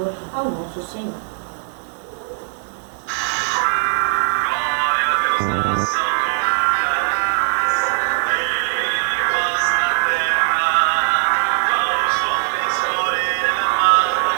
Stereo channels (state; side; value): silent; left; digital silence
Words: ao nosso Senhor.